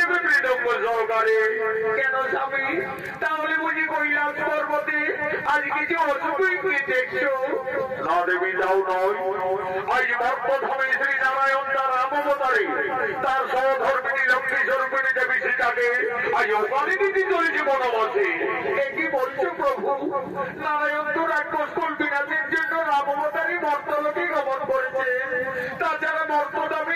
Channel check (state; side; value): identical; both; correlation 1.00